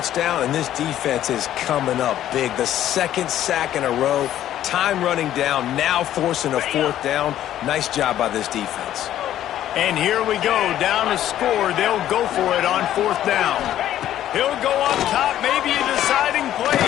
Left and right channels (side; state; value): right; quieter; 12.0 dB